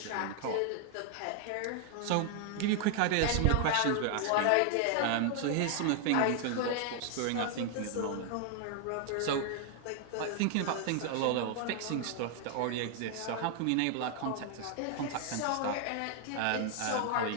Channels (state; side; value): different; both; correlation 0.00